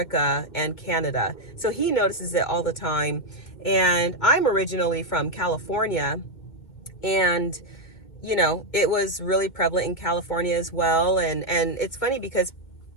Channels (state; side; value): late; right; 2.1 ms